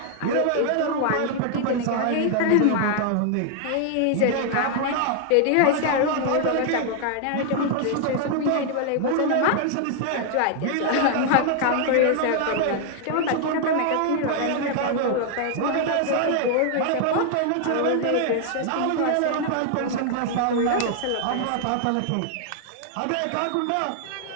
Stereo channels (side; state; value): both; different; correlation 0.00